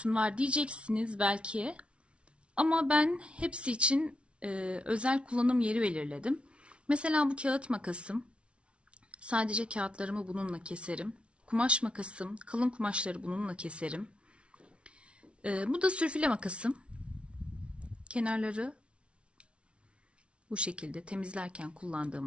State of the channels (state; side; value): late; left; 0.060 ms